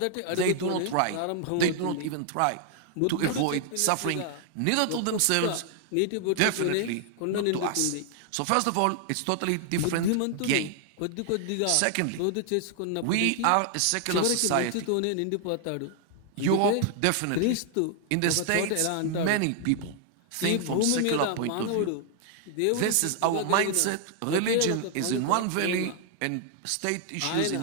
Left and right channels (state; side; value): different; both; correlation 0.00